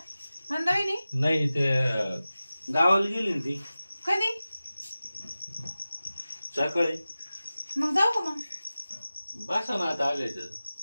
मंदाविनी? नाही ते गावाला गेली ना ती कधी? सकाळी. मग जाऊ का मग? बसा ना आता आले तर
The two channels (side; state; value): both; inverted; correlation -0.96